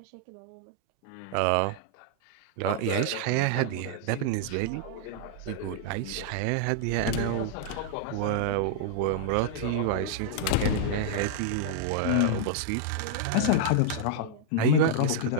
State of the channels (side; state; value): both; different; correlation -0.01